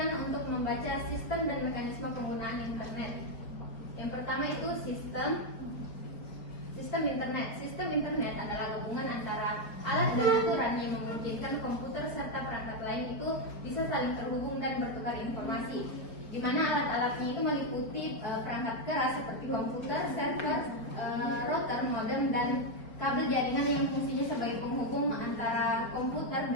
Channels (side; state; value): right; late; 4.4 ms